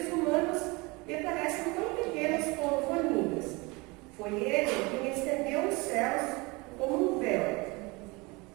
humanos lhe parecem tão pequenos como formigas. Foi Ele quem estendeu os céus como um véu,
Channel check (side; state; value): left; quieter; 25.6 dB